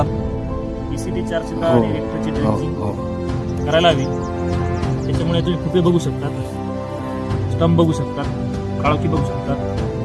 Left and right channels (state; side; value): identical; both; correlation 1.00